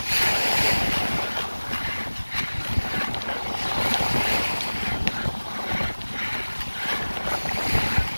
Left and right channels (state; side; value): inverted; both; correlation -1.00